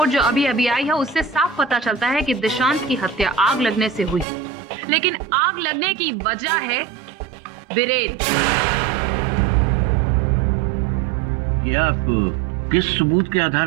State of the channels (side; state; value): left; drops out; at 4.2 s